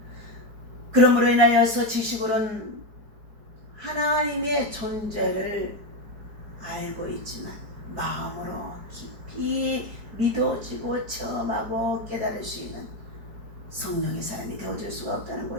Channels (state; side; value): late; left; 4.8 ms